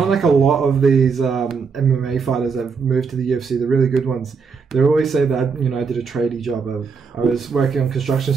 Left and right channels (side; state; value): left; quieter; 5.5 dB